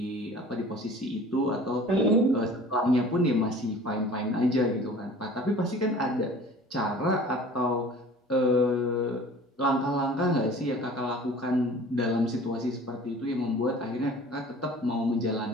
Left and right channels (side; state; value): both; normal; correlation 0.45